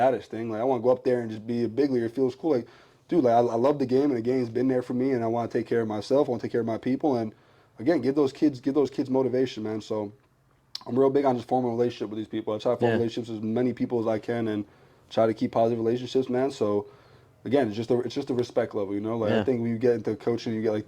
thing. Like, I want to go up there and just be a big leaguer. It feels cool. Like, dude, like I love the game, and the game's been there for me, and I want to take care of myself. I want to take care of my people, and again, give those kids motivation, man. So I'm real big on just forming a relationship with these people. I try to form relationships with as many people as I can, and try to keep positive relationships, man. So again, it's just a respect level, Like I think when you get into coaching, you get like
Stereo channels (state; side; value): identical; both; correlation 1.00